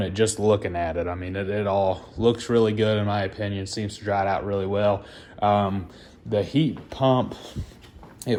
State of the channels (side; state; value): both; identical; correlation 1.00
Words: it just looking at it. I mean, it all looks really good in my opinion. Seems to dry out really well. The heat pump,